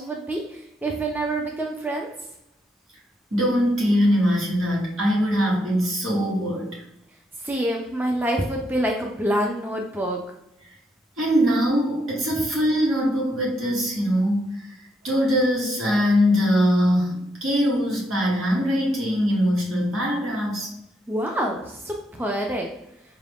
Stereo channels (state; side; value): normal; both; correlation 0.78